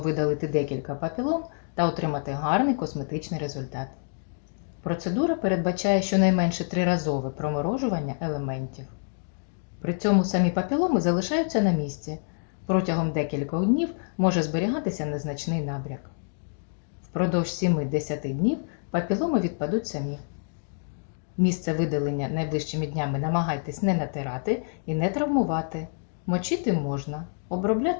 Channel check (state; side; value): silent; right; 60 dB below the other